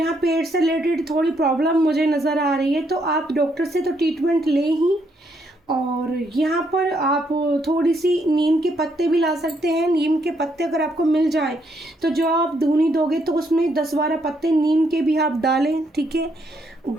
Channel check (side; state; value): both; normal; correlation 0.74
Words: पेट से रिलेटेड थोड़ी प्रॉब्लम मुझे नज़र आ रही है, तो आप डॉक्टर से तो ट्रीटमेंट ले ही। और यहाँ पर आप थोड़ी सी नीम के पत्ते भी ला सकते हैं। नीम के पत्ते अगर आपको मिल जाए तो जो आप धुनी दोगे तो उसमें 10-12 पत्ते नीम के भी आप डालें, ठीक है।